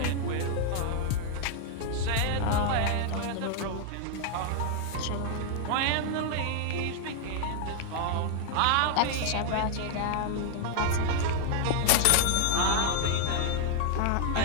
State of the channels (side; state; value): both; different; correlation 0.00